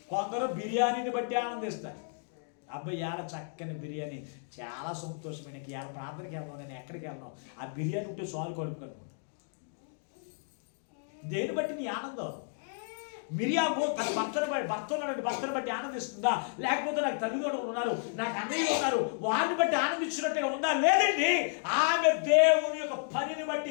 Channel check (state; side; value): silent; right; digital silence